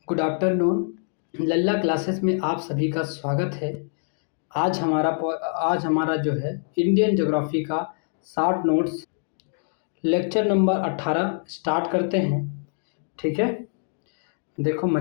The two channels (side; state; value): right; silent; digital silence